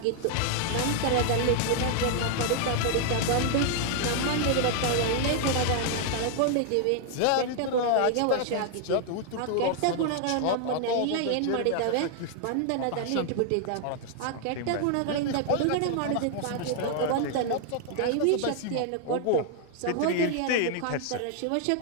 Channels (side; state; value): both; different; correlation 0.00